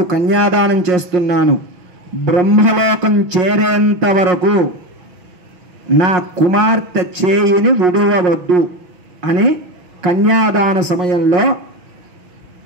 కన్యాదానం చేస్తున్నాను. బ్రహ్మలోకం చేరేంత వరకు నా కుమార్తె చేయిని విడువవద్దు అని కన్యాదాన సమయంలో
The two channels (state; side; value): late; left; 5.5 ms